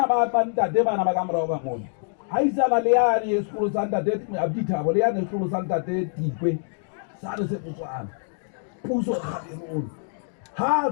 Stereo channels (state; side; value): silent; right; digital silence